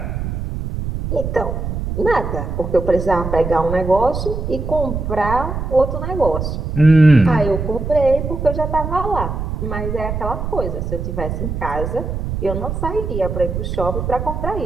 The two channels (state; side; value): noise; right; rumble, 4 dB below the sound